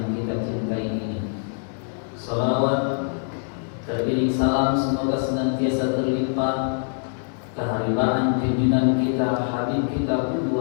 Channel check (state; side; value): silent; right; digital silence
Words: kita cintai ini. Salawat teriring salam semoga senantiasa terlimpah keharibaan junjungan kita, habib kita,